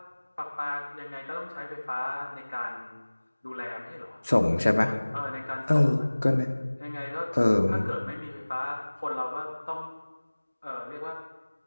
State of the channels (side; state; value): both; inverted; correlation -1.00